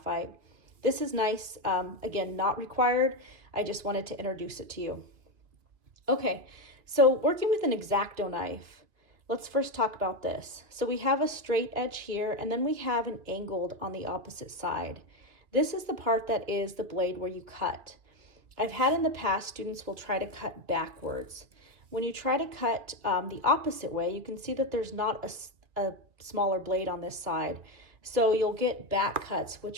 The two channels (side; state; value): left; late; 2.3 ms